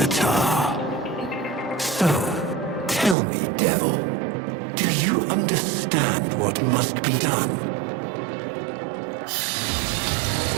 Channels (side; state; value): left; drops out; at 3.2 s